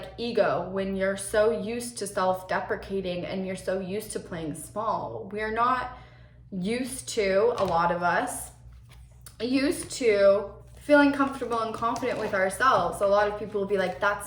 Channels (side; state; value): both; identical; correlation 1.00